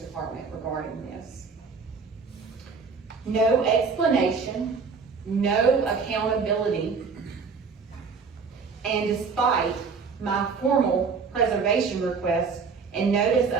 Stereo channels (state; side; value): quieter; left; 5.2 dB